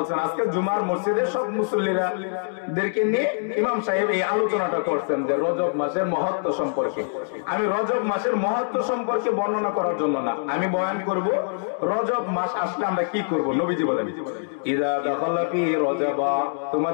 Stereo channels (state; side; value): silent; right; digital silence